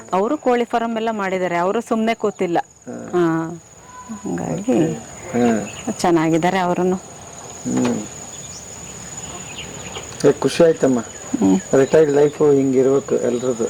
ಅವರು ಕೋಳಿ ಫಾರಂ ಎಲ್ಲ ಮಾಡಿದ್ದಾರೆ. ಅವರು ಸುಮ್ನೆ ಕೂತಿಲ್ಲ. ಹಂಗಾಗಿ ಚೆನ್ನಾಗಿದ್ದಾರೆ ಅವರನ್ನು. ಖುಷಿ ಆಯ್ತಮ್ಮ. ರಿಟೈರ್ಡ್ ಲೈಫ್ ಹಿಂಗಿರ್ಬೇಕು ಎಲ್ರದ್ದು.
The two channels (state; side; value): identical; both; correlation 1.00